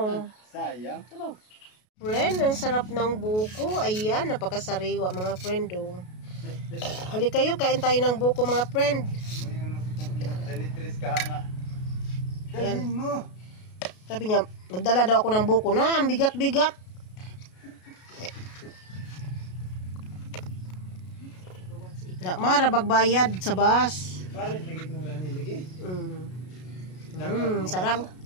Sayang. Sabaw. Friend, ang sarap ng buko. Ayan, napakasariwa mga friend. Oh. Halik kayo, kain tayo ng buko mga friend. May ano ko itong dalitris ka nga. Ayan. Dalhin mo. Sabi niya, magdala daw ako ng buko na, ang bigat-bigat. Mara bagbayad sa bus. Parit lagi itong rani lagi. Sarap.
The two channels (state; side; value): late; right; 33 ms